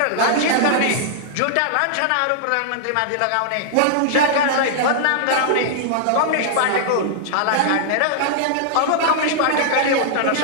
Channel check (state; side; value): different; both; correlation -0.01